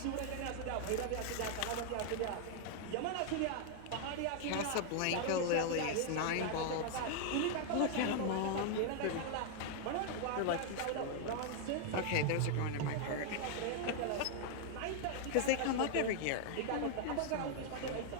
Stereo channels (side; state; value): both; different; correlation 0.00